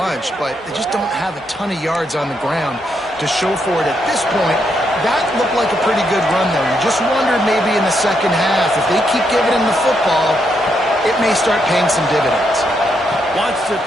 but they just don't have a ton of yards on the ground to show for it at this point. That looked like a pretty good run, though. You just wondered maybe in the second half, if they keep giving him the football, it may start paying some dividends. Wants to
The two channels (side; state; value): both; normal; correlation 0.78